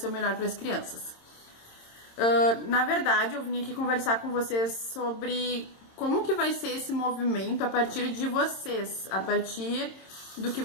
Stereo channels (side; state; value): right; late; 26 ms